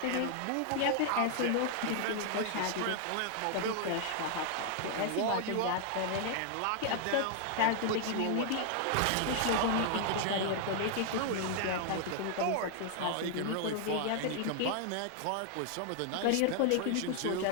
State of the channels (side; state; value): both; different; correlation 0.00